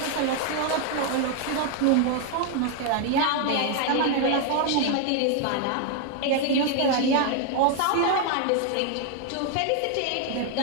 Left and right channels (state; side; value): different; both; correlation 0.00